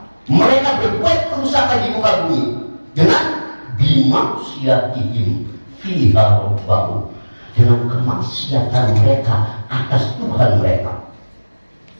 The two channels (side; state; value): both; inverted; correlation -1.00